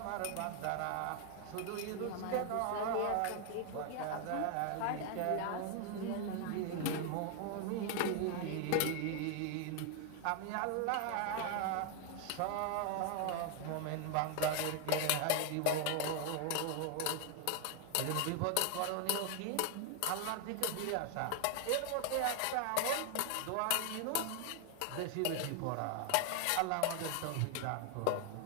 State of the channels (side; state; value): both; different; correlation 0.00